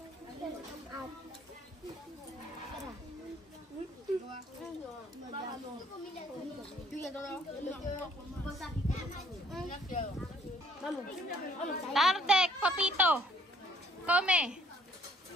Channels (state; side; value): normal; both; correlation 0.61